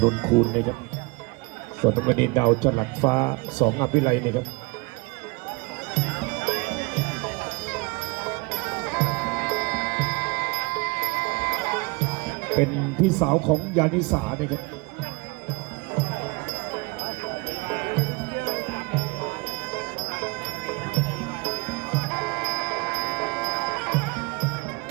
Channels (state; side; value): quieter; left; 26.7 dB